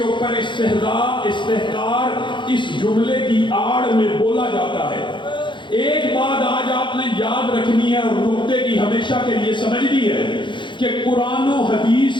اوپر استحقار اس جملے کی آڑ میں بولا جاتا ہے۔ ایک بات آج آپ نے یاد رکھنی ہے اور نقطے کی ہمیشہ کے لیے سمجھنی ہے کہ قرآن و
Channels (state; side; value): late; right; 0.23 ms